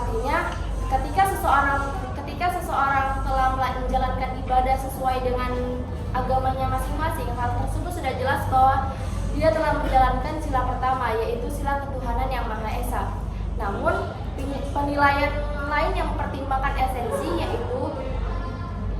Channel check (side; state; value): both; identical; correlation 1.00